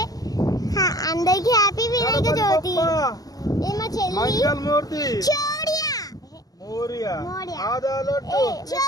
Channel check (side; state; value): right; late; 0.18 ms